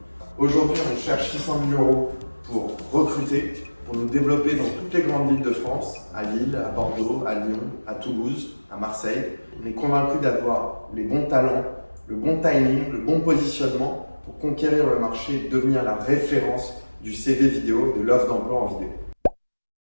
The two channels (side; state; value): both; inverted; correlation -1.00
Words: Aujourd'hui, on cherche 600 000 € pour recruter, pour nous développer dans toutes les grandes villes de France, à Lille, à Bordeaux, à Lyon, à Toulouse, à Marseille. On est convaincu d'avoir les bons talents, le bon timing, le bon positionnement pour conquérir le marché et devenir la référence du CV vidéo, de l'offre d'emploi en vidéo.